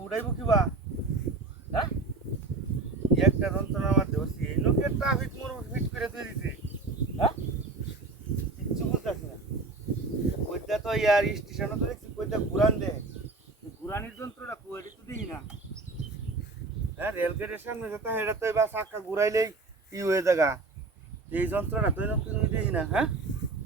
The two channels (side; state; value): left; quieter; 3.6 dB